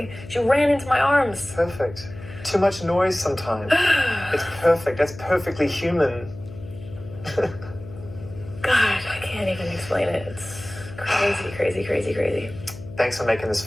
She ran into my arms. Perfect. Too much noise sometimes. It's perfect. That's perfectly human. God, I can't even explain it. It's crazy. Thanks for making this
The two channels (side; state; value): left; noise; hum, 15 dB below the sound